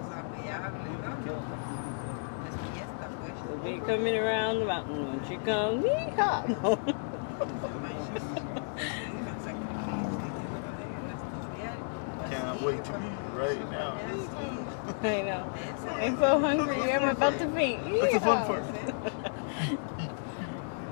We'll be coming around the mountain when she comes. Yeehaw! Can't wait to be right now. I know. I'm so hungry. I'm about to faint. That's the fun part.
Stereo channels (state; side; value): silent; right; digital silence